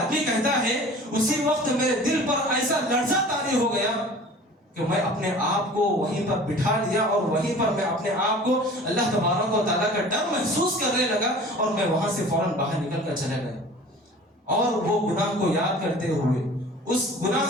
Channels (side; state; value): both; normal; correlation 0.44